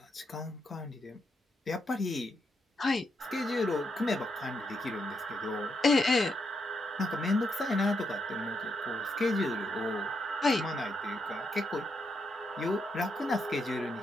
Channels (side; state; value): both; normal; correlation 0.80